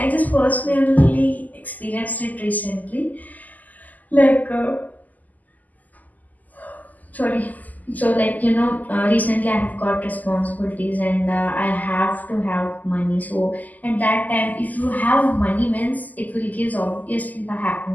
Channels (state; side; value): late; right; 0.081 ms